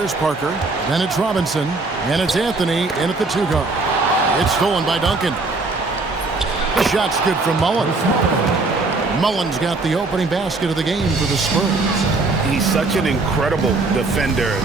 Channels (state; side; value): quieter; left; 3.5 dB